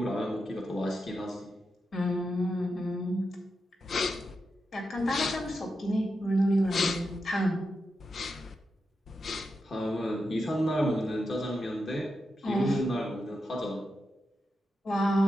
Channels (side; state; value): both; normal; correlation 0.87